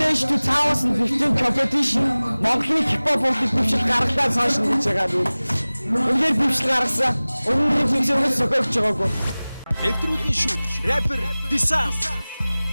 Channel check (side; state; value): both; inverted; correlation -0.99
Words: 2015 competition Монголын хип-хоп урлаг дэвшил гаргалаа цааш нь гэж байгаа юм. Үнээр дэвшил гаргасан. Өмнөний функционыг сөхөж байгаагүй. Нэвтрүүлгийн шүүгч rapper Disan.